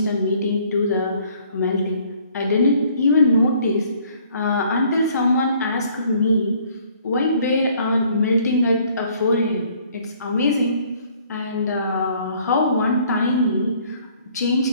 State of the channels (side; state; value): both; inverted; correlation -0.60